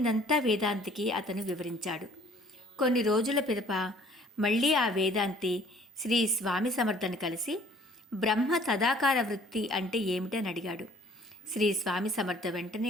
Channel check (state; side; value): normal; both; correlation 0.56